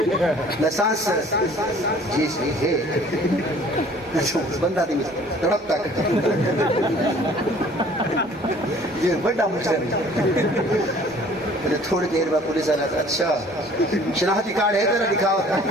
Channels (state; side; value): normal; both; correlation 0.52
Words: लाइसेंस जी सही है बंदा दी तड़प तक ये बड़ा मुश्किल है थोड़ी देर बाद पुलिस वाला अच्छा शनाख्ती कार्ड है तेरा दिखाओ